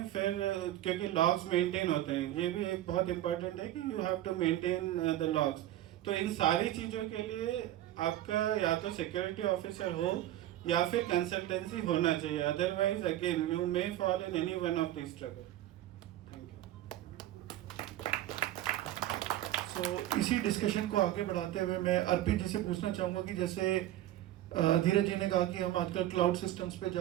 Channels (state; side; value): quieter; left; 13.8 dB